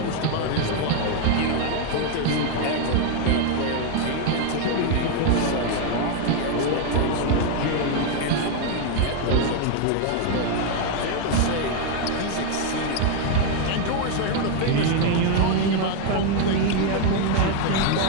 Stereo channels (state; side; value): different; both; correlation 0.00